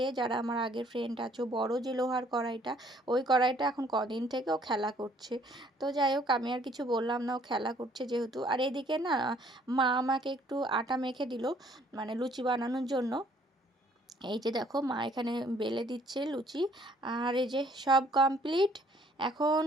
যারা আমার আগের ফ্রেন্ড আছো, বড় যে লোহার কড়াইটা, ওই কড়াইটা এখন কদিন থেকে ও খেলা করছে। তো যাই হোক, আমি আর কিছু বললাম না, ও খেলা করছে যেহেতু। আর এদিকে না মা আমাকে একটু আটা মেখে দিল, মানে লুচি বানানোর জন্য। এই যে দেখো মা এখানে বেলে দিচ্ছে লুচি। আর এই যে সব কমপ্লিট। এখন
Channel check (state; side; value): normal; both; correlation 0.61